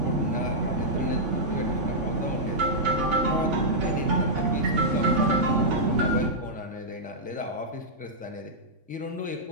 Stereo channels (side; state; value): left; late; 3.5 ms